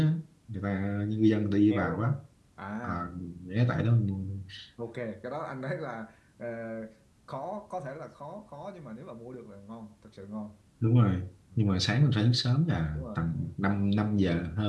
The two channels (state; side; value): identical; both; correlation 1.00